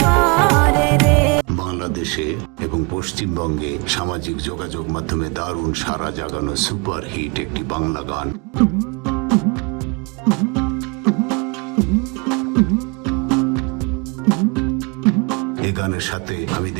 করে রে। বাংলাদেশে এবং পশ্চিমবঙ্গে সামাজিক যোগাযোগ মাধ্যমে দারুণ সারা জাগানো সুপার হিট একটি বাংলা গান। এই গানের সাথে আমি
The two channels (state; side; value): quieter; left; 30.8 dB